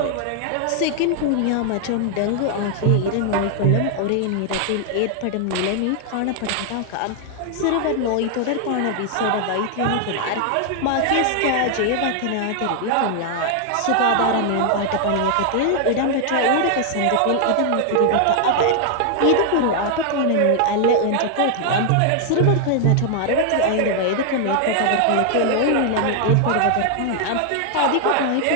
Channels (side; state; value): both; different; correlation 0.00